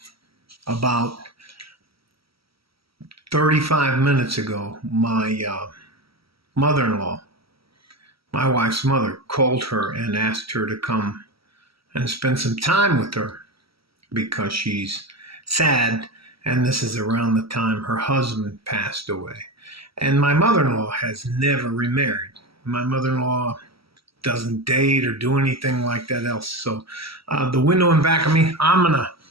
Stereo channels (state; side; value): late; left; 0.75 ms